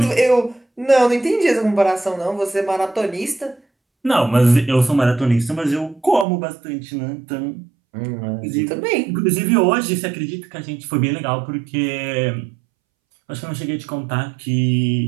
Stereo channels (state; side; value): drops out; left; at 6.2 s